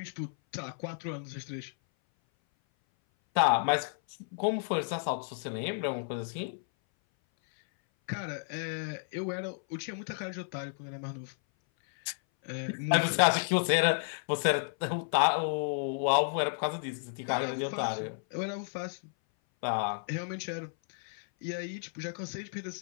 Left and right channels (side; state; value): right; silent; 56 dB below the other